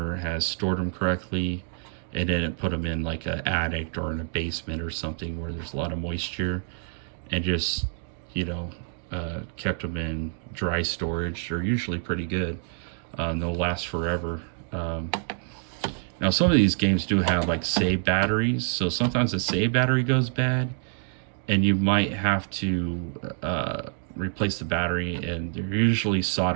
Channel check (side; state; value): left; silent; 60 dB below the other